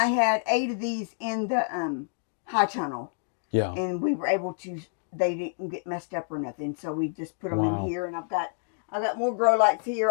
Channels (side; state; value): right; silent; digital silence